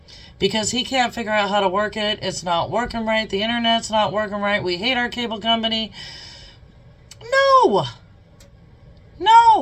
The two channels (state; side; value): identical; both; correlation 1.00